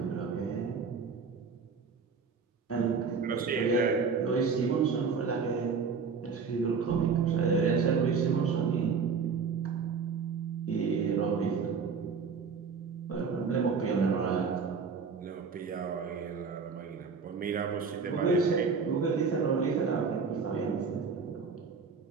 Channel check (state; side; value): quieter; left; 5.4 dB